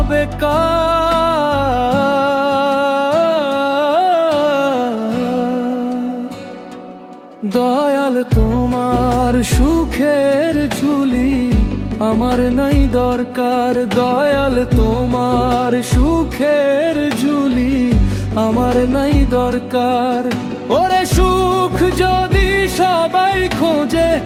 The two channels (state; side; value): identical; both; correlation 1.00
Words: কার? দয়াল তোমার সুখের ঝুলি আমার নাই দরকার। দয়াল তোমার সুখের ঝুলি আমার নাই দরকার। ওরে সুখ যদি সবাই খোঁজে,